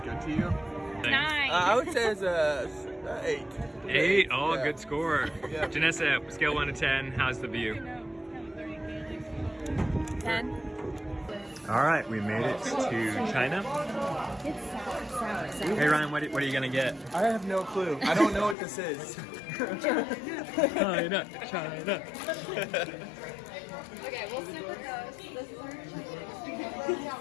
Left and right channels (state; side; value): drops out; right; at 18.6 s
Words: to you? 9. I would say it's a 8. 8? Oh, Yeah. good score. Yeah. Janessa, scale 1 to 10. How's the view? 10. All right, we made it to China. It's sour. Hey Ryan, what are you gonna get? I have no clue. I don't know what this is. China, China. Okay, we'll super coast. This is our